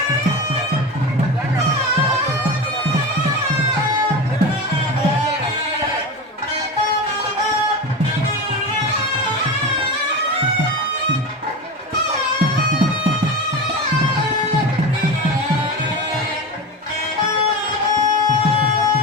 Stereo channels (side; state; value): both; normal; correlation 0.25